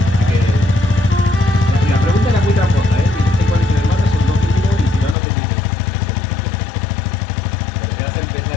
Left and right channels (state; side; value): drops out; right; at 5.2 s